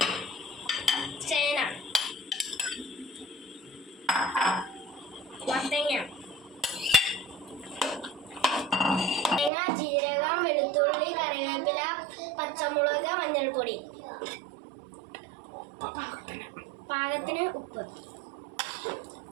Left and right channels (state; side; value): drops out; left; at 9.5 s